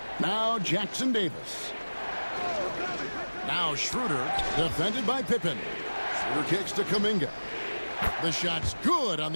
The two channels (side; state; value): both; inverted; correlation -1.00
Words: Now Jackson Davis. Now Schroeder, defended by Pippen. Schroeder kicks to Kuminga. The shot's good on